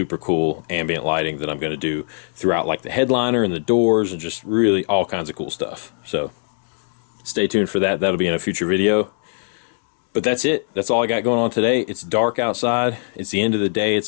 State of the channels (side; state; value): right; silent; digital silence